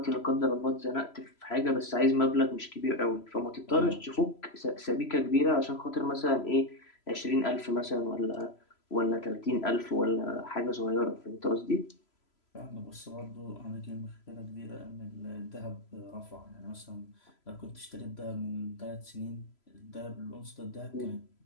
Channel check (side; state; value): right; late; 3.0 ms